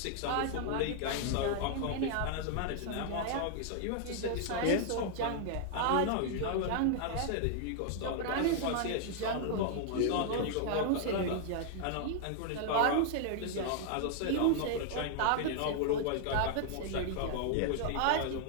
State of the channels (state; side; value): different; both; correlation 0.00